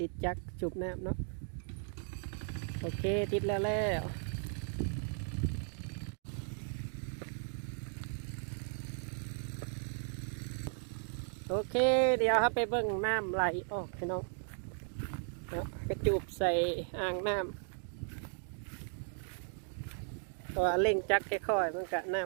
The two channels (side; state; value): left; silent; 54 dB below the other